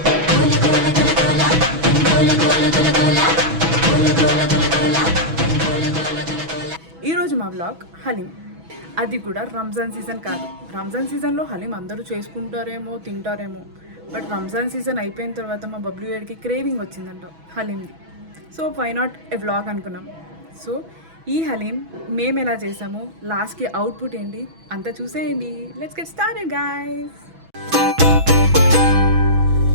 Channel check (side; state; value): left; late; 6.1 ms